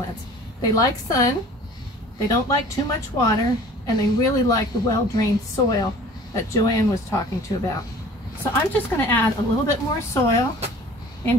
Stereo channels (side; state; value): both; normal; correlation 0.47